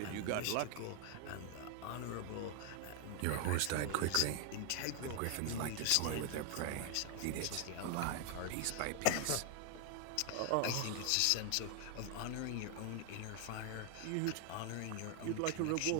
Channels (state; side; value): different; both; correlation 0.00